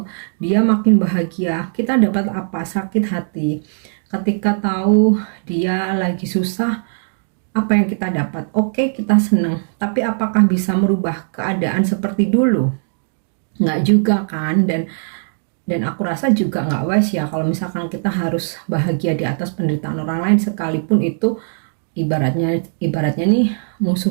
dia makin bahagia, kita dapat apa? Sakit hati. Ketika tahu dia lagi susah, apa yang kita dapat? Oke, kita senang. Tapi apakah bisa merubah keadaan seperti dulu? Nggak juga kan. Dan aku rasa juga nggak wise ya kalau misalkan kita harus bahagia di atas penderitaan orang lain, sekalipun itu ibaratnya nih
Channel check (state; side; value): silent; left; digital silence